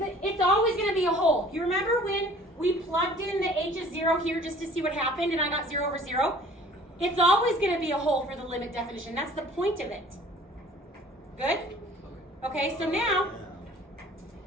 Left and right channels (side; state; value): both; normal; correlation 0.50